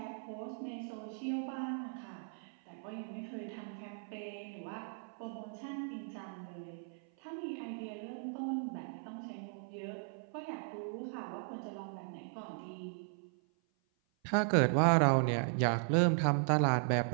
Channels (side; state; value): left; silent; 53 dB below the other